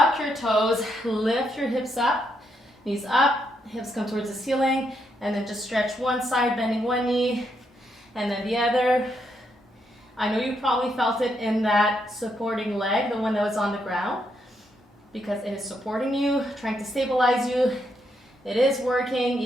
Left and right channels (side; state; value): both; normal; correlation 0.78